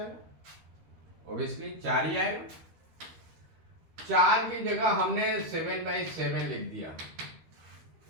ऑब्वियसली 4 ही आएगा। 4 की जगह हमने 7/7 लिख दिया,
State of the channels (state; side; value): late; left; 13 ms